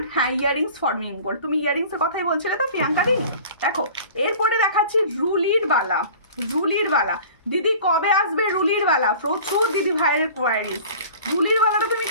হ্যাঁ ইয়ারিংস ফর্মিং গোল্ড। তুমি ইয়ারিংসের কথাই বলছিলে তো প্রিয়াঙ্কা দি। দেখো এরপরে দেখাচ্ছি রুলির বালা। রুলির বালা দিদি কবে আসবে? রুলির বালা প্রচুর দিদি ভাইয়ের কোয়ারিজ। রুলির বালাটা তুমি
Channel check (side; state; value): both; inverted; correlation -0.43